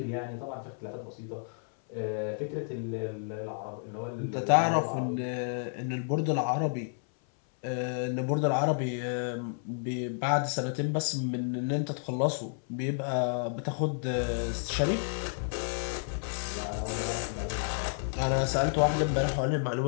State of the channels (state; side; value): silent; right; 57 dB below the other